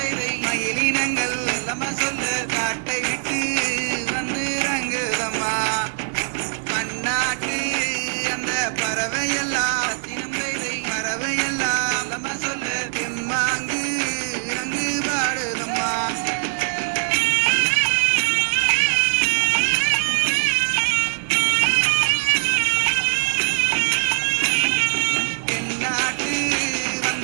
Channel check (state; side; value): silent; left; digital silence